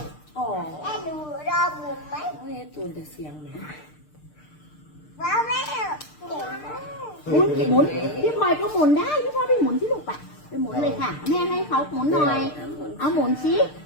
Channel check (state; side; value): late; right; 6.6 ms